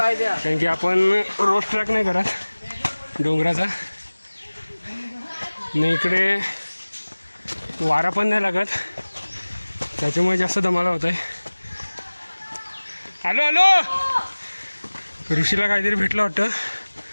की आपण रोड ट्रॅक नाही करत डोंगराचा, नाही इकडे वारा पण नाही लागत, त्याच्यामुळे जास्त दमाला होत आहे. आलो आलो. ऋषीला काहीतरी भेटलं वाटतं,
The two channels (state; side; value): inverted; both; correlation -1.00